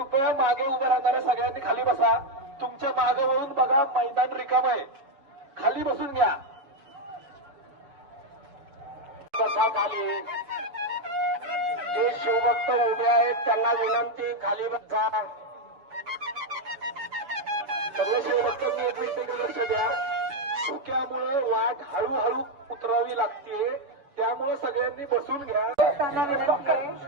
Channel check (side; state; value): left; late; 7.0 ms